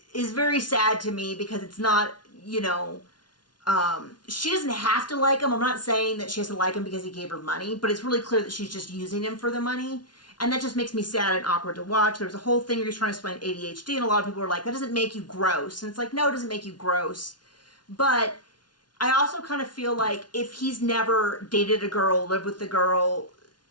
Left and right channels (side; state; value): right; late; 0.70 ms